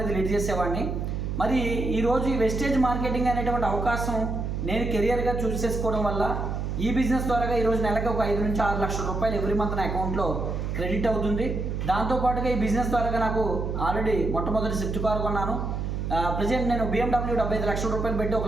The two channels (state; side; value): noise; right; hum, 2 dB below the sound